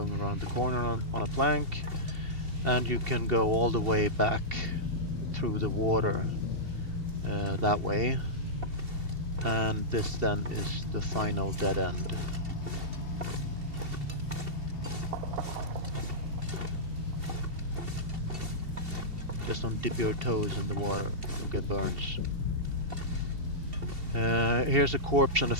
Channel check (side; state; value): left; late; 2.7 ms